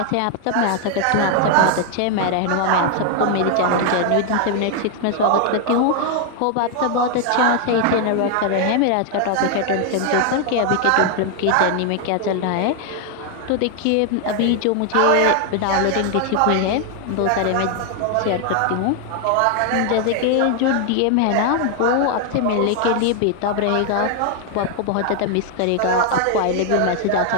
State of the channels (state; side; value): different; both; correlation 0.00